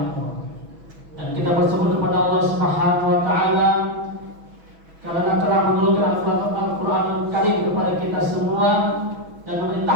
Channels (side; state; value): left; late; 6.1 ms